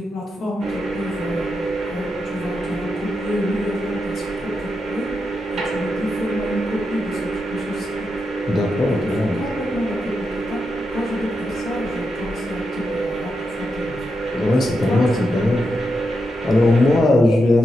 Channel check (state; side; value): normal; both; correlation 0.85